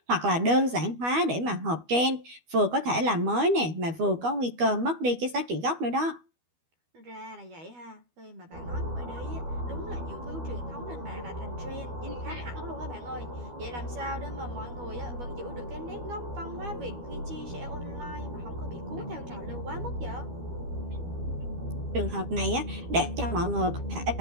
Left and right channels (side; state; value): left; late; 12 ms